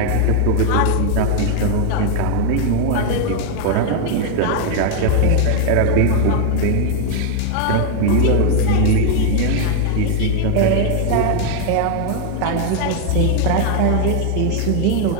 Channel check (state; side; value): different; both; correlation 0.00